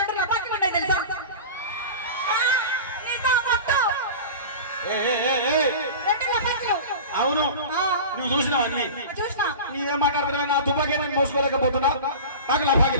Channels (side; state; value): both; inverted; correlation -0.32